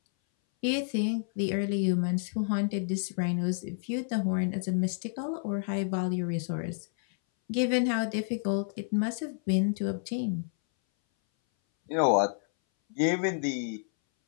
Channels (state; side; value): silent; right; 58 dB below the other